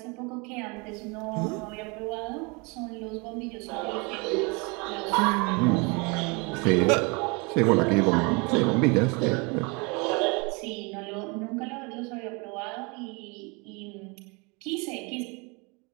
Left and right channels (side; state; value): left; quieter; 29.8 dB